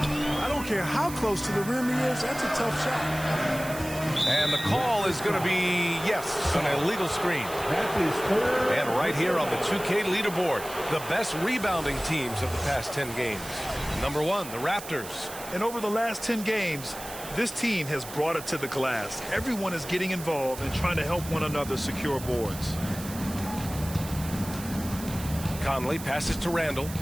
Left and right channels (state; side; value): noise; right; hiss, 12 dB below the sound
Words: I don't care how close to the rim he is, that's a tough shot. And the call is going to be, yes, an illegal screen. And right here on the 2K leaderboard, the best rebounding teams of the past 10 games. Number 1, the Raptors. And over the last 10 games, this team has brought it to the glass. Everyone is getting involved and trying to help one another secure boards. Conley passes to Randall.